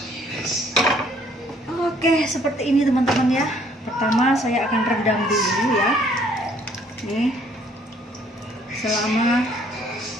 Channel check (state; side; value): normal; both; correlation 0.62